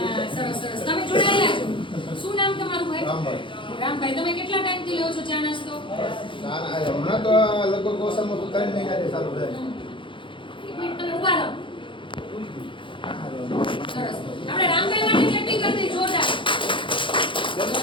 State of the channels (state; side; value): late; right; 0.24 ms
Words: સરસ સરસ. તમે જોડાયેલા છો. શું નામ તમારું ભાઈ? રામભાઈ. તમે કેટલા ટાઈમથી લ્યો છો ચા નાસ્તો? ના હમણાં તો લગભગ ઓછામાં ઓછું 3 મહિનાથી ચાલુ થાય. એક મિનિટ તમે ઊભા રહો. સરસ. આપણે રામભાઈ માટે ક્લેપિંગ કરી દઈએ જોરદાર.